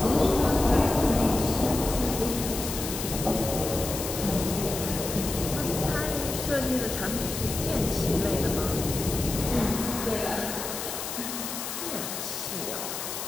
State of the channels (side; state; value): left; noise; hiss, 6 dB below the sound